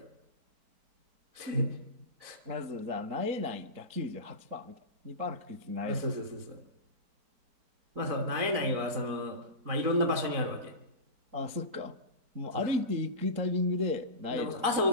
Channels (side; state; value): left; late; 4.0 ms